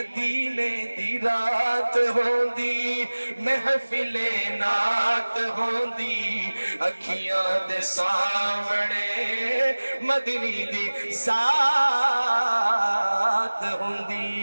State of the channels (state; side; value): inverted; both; correlation -1.00